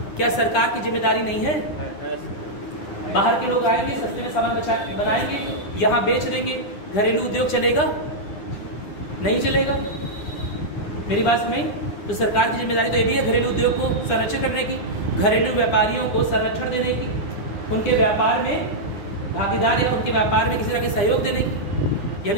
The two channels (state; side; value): late; right; 9.9 ms